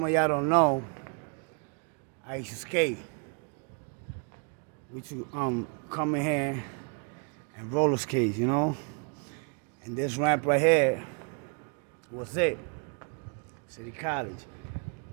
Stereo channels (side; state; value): left; quieter; 39.6 dB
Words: of y'all don't know, I used to skate. We used to come in here and roller skate, you know? And this ramp right here was it. City College.